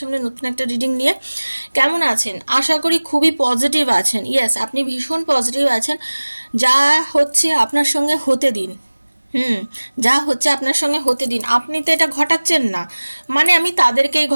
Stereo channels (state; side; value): inverted; both; correlation -1.00